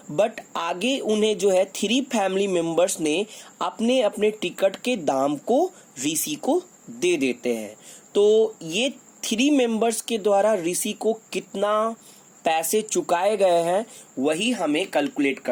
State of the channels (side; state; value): both; identical; correlation 1.00